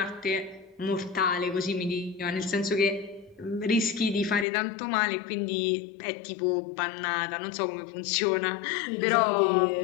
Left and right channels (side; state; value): right; drops out; at 4.5 s